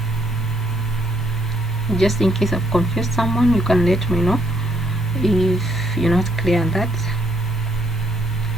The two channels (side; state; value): both; normal; correlation 0.72